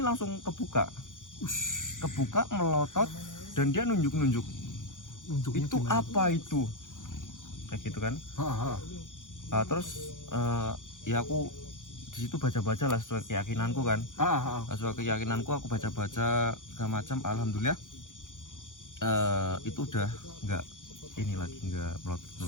kebuka, melotot, dan dia nunjuk. Itu apa itu? Kayak gitu kan. Terus ya aku di situ baca-baca lah sesuai keyakinanku kan. Sesuai keyakinanku aku baca-baca segala macam. Alhamdulillah itu udah nggak ini lagi, nggak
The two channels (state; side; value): late; right; 0.88 ms